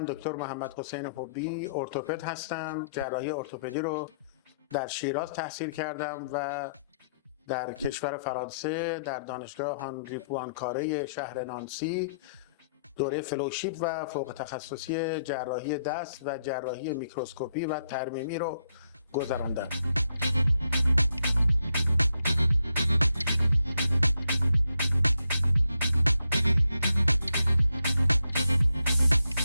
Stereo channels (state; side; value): inverted; both; correlation -0.77